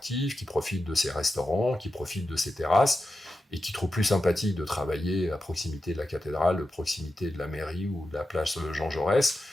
qui profitent de ses restaurants, qui profitent de ses terrasses, et qui trouvent plus sympathique de travailler à proximité de la cathédrale, de proximité de la mairie ou de la place Jean Jaurès,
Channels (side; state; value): both; normal; correlation 0.90